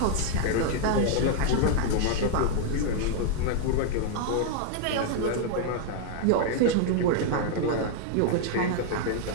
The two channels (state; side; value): different; both; correlation 0.00